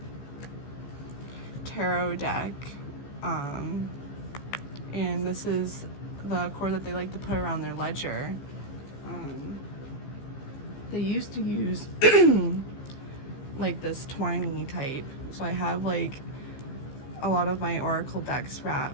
tarot deck, and this is the cord that they like to put around their ledger. They used to use like this twiny type, so I have like a lot of my oracle decks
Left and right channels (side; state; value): right; late; 15 ms